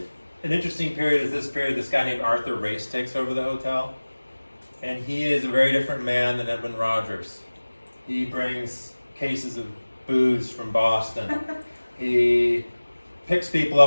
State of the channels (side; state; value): both; inverted; correlation -1.00